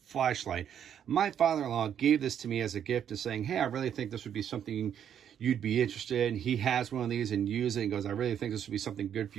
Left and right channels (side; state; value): left; quieter; 9.2 dB